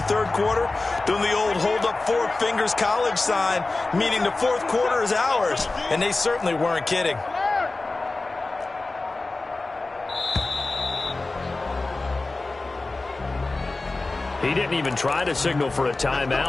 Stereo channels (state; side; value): quieter; right; 3.3 dB